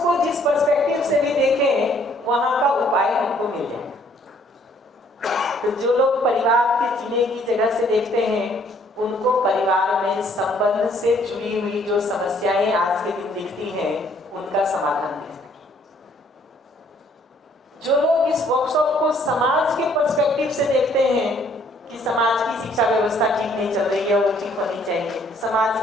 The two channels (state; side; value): normal; both; correlation 0.63